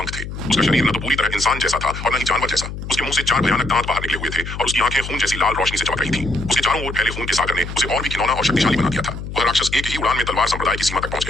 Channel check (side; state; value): left; noise; hum, 8 dB below the sound